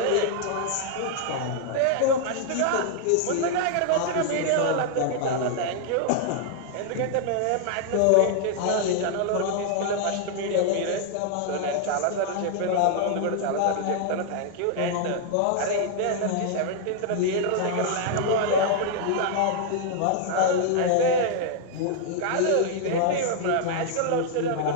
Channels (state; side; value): different; both; correlation -0.01